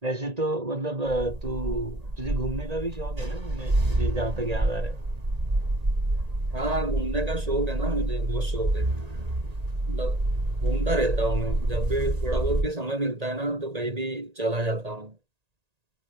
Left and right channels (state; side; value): late; left; 1.8 ms